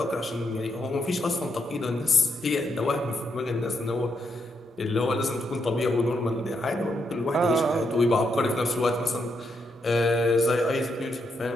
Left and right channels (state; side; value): normal; both; correlation 0.79